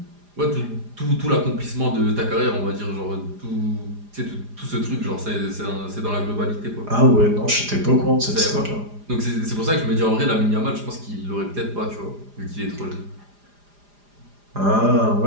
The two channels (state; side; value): late; left; 4.9 ms